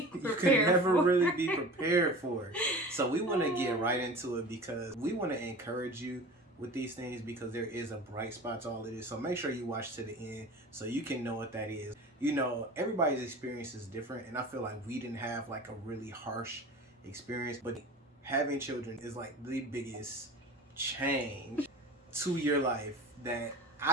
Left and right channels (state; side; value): normal; both; correlation 0.37